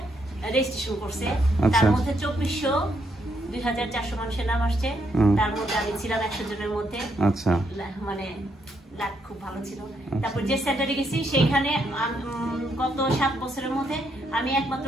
রেজিস্ট্রেশন করছে, তার মধ্যে 2400-2400 মানুষের নাম আসছে, তার মধ্যে আমি ছিলাম 100 জনের মধ্যে। আচ্ছা, মানে লাক খুব ভালো ছিল। তারপর যে সেন্টারে গেছি সেইখানে গত 7 বছরের মধ্যে আমি একমাত্র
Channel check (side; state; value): both; normal; correlation 0.76